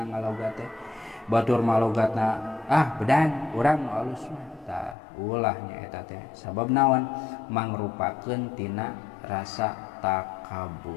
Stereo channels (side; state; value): right; drops out; at 5.0 s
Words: ngalogat teh batur malogatna bedan urang nu alus mah tah ulah nya eta teh sabab naon mangrupakeun tina rasa